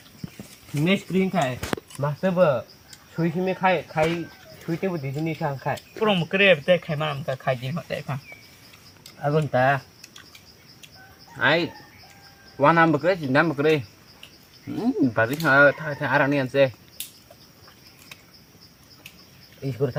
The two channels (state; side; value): identical; both; correlation 1.00